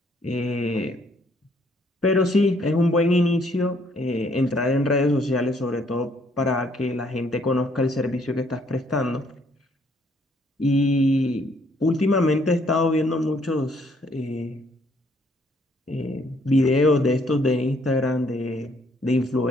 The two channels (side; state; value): both; normal; correlation 0.67